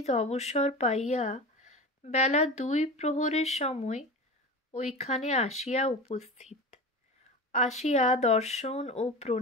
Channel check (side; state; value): both; normal; correlation 0.29